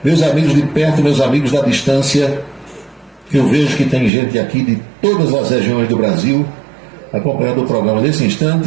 meus amigos de perto, meus amigos da distância, eu vejo que tem gente aqui de todas as regiões do Brasil acompanhando o programa nesse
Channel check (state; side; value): drops out; left; at 4.1 s